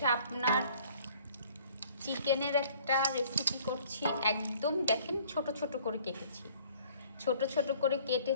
আপনার চিকেনের একটা রেসিপি করছি। একদম দেখেন ছোট ছোট করে কেটেছি, ছোট ছোট করে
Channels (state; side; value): inverted; both; correlation -0.56